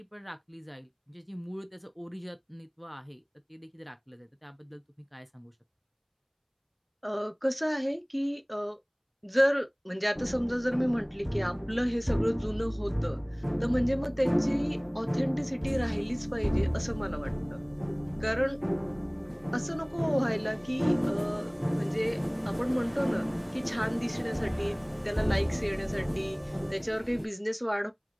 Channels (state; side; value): identical; both; correlation 1.00